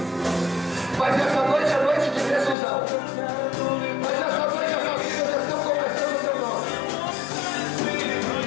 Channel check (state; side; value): drops out; right; at 2.6 s